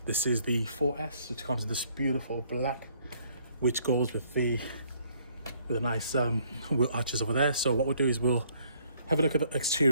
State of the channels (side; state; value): both; inverted; correlation -0.65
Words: This is the 4S, which comes in this beautiful black, which goes with the nice wheel arches over there. So what we'll do is we'll have a look at the